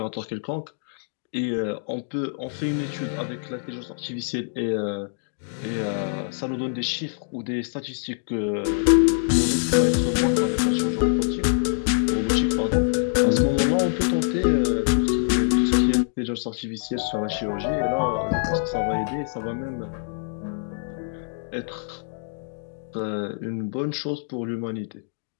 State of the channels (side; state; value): right; silent; digital silence